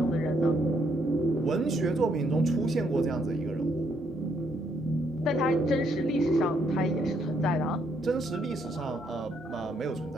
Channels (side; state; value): both; normal; correlation 0.72